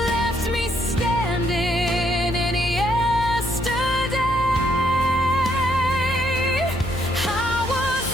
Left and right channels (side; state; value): left; noise; hum, 9 dB below the sound